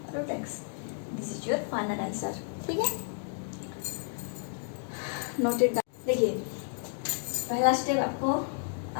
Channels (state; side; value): silent; right; 57 dB below the other